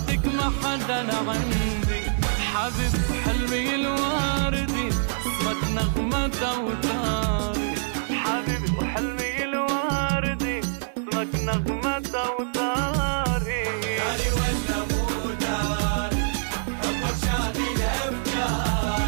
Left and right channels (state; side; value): silent; left; 56 dB below the other